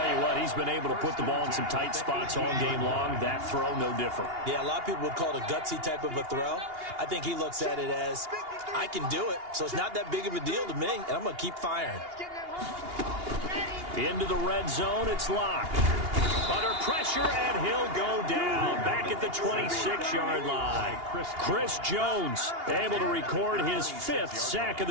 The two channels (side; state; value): left; late; 2.8 ms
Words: you what, he's been able to put the ball in some tight spots all game long. That throw, no different. Yeah, a lot of people would call it a gutsy type of a throw. I think he looks at it as, I can do it, so it's not that big of a deal to me, and I'm going to keep firing. Into the red zone, it's Locke. Under pressure, and he'll go down. Back at the 26-yard line. Chris Jones able to record his 5th sack of